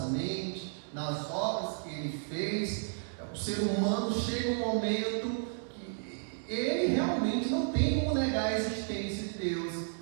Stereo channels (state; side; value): silent; left; digital silence